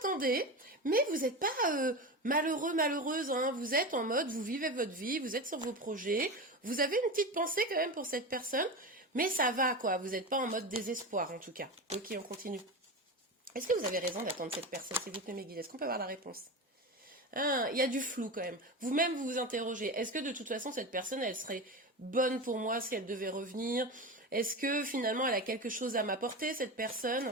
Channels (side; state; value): both; normal; correlation 0.24